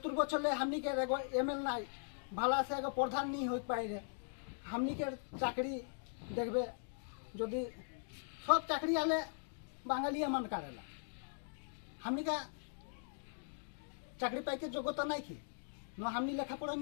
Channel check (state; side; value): silent; right; digital silence